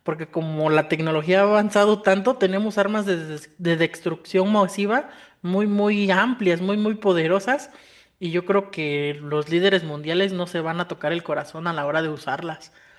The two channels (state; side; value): identical; both; correlation 1.00